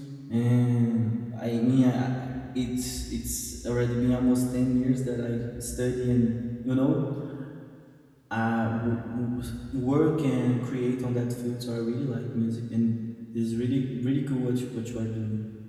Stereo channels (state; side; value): identical; both; correlation 1.00